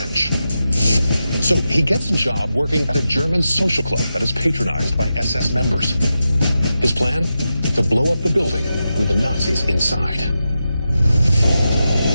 So he gets a job working at a German social club that is patronized by SS members. His plan? To blow up the building with the Nazis inside.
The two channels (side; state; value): both; inverted; correlation -0.90